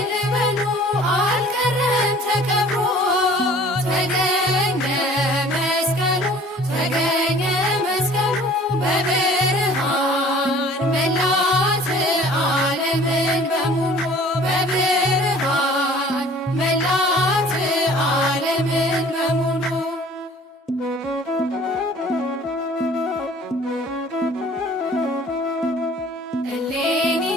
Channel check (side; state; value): both; normal; correlation 0.50